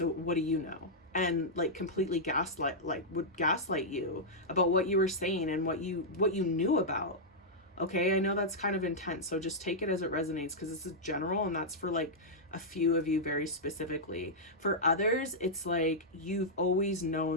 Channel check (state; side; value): normal; both; correlation -0.08